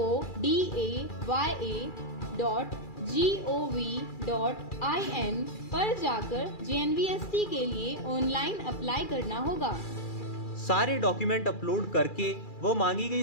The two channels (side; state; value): right; late; 2.4 ms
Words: पर जाकर JNVST के लिए ऑनलाइन अप्लाई करना होगा। सारे डॉक्यूमेंट अपलोड करके वो मांगी